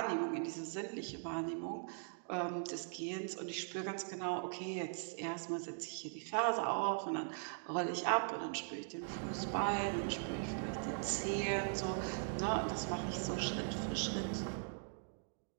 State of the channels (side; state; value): left; silent; digital silence